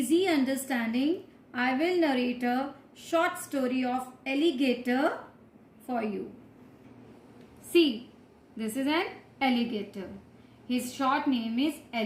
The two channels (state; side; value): identical; both; correlation 1.00